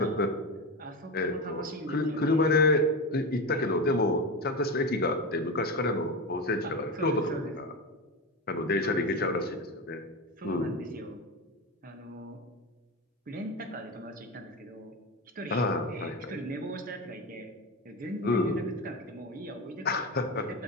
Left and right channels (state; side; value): normal; both; correlation 0.19